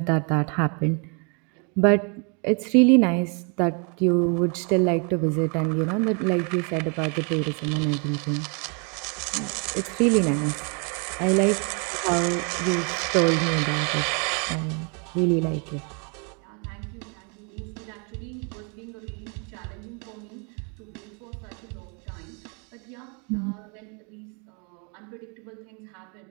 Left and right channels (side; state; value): left; quieter; 36.3 dB